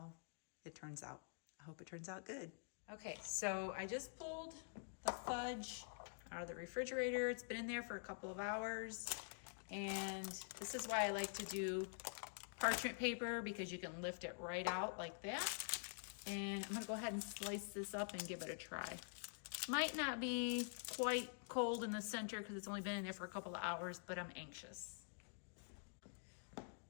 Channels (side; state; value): right; silent; digital silence